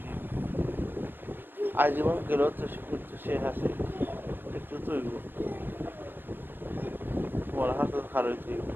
আজীবন গেলেও তো সে করতে সে আছে একটু তো হইব তোমার হাতে খারাপ হইতে হইব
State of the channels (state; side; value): late; left; 0.092 ms